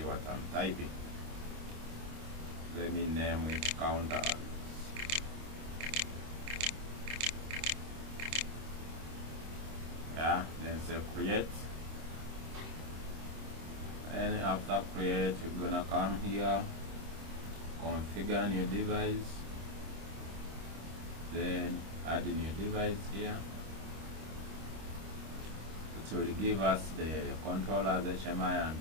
what I'm typing. Let me name it counters. Yeah, then say create. And after create, you're gonna come here, configure new device, then add a new device here. It will give us the controllers HMI and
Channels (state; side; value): late; left; 26 ms